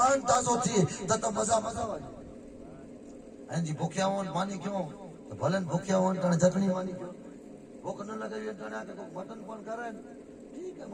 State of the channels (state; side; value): identical; both; correlation 1.00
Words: تازو تھی تو مزا والی ہیں جی بھوکیا ہون مانی کیوں تو بھلن بھوکیا ہون تن چٹنی مانی کیوں بھوک نہ لگے تن آ کے مٹن پن کرے ٹھیک ہے